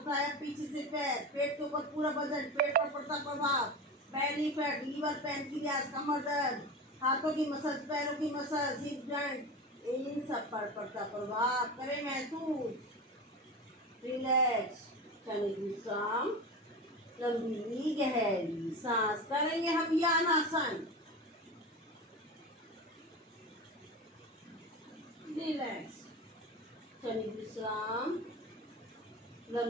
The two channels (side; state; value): both; normal; correlation 0.26